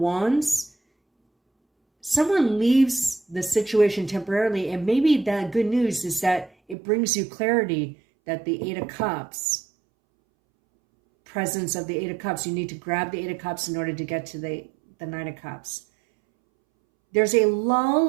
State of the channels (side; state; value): left; drops out; at 6.8 s